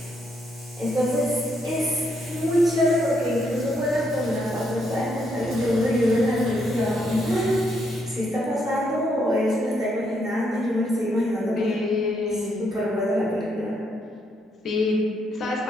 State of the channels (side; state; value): both; normal; correlation 0.75